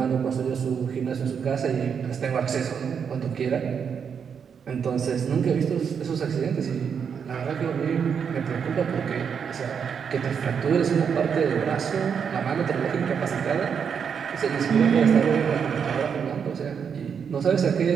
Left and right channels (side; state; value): left; quieter; 7.0 dB